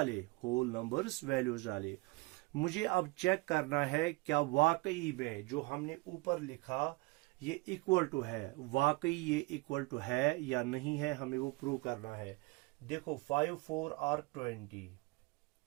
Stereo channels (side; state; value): left; quieter; 24.0 dB